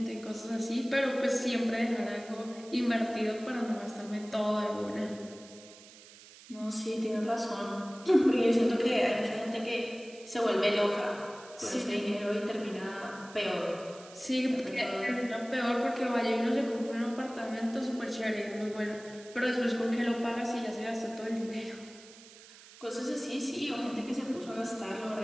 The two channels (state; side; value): noise; right; hiss, 20 dB below the sound